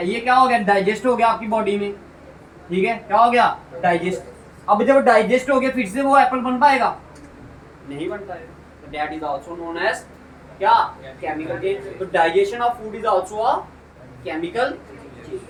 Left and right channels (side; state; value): both; identical; correlation 1.00